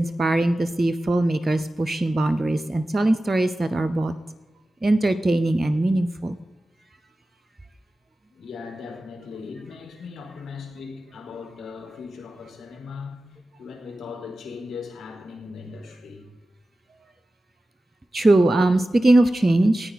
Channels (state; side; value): normal; both; correlation 0.95